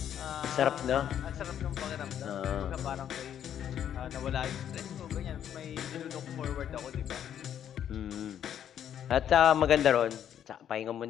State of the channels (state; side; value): quieter; right; 9.7 dB